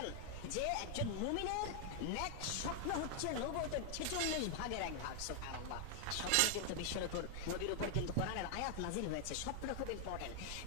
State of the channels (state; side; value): different; both; correlation 0.00